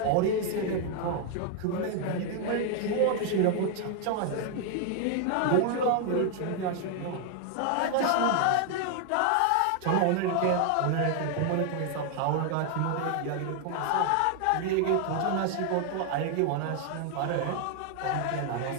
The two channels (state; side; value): different; both; correlation 0.00